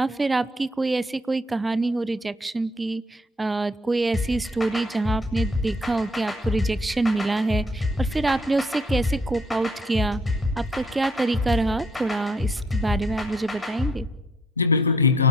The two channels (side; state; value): both; normal; correlation 0.65